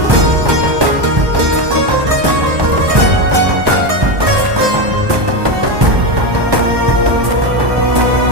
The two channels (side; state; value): left; late; 1.2 ms